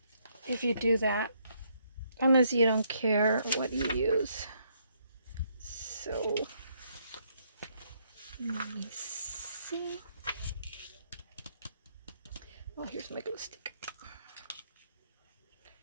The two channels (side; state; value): both; inverted; correlation -0.72